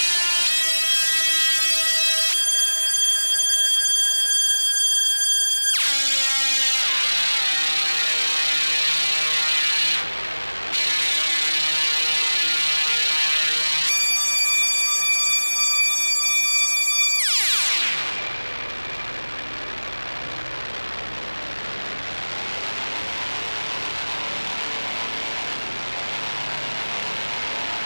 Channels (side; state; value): both; inverted; correlation -1.00